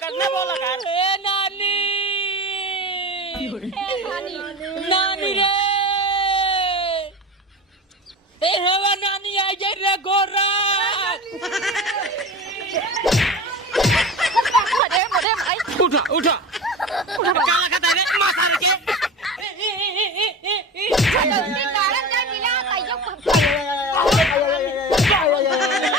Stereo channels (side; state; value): both; normal; correlation 0.31